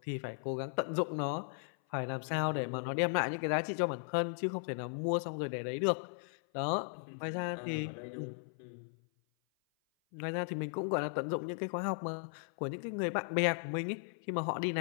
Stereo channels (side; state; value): right; silent; 53 dB below the other